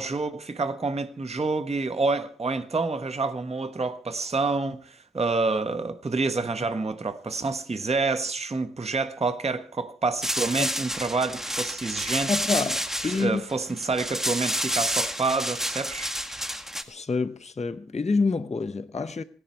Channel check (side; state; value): both; normal; correlation 0.68